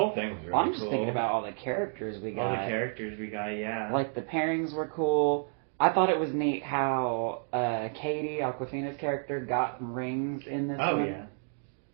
thing was really cool. I'm just thinking about all the characters we got. Yeah. Like, the pairings were cool. I thought it was neat how Katie, Awkwafina's character, got rings in this one.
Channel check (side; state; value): left; silent; 57 dB below the other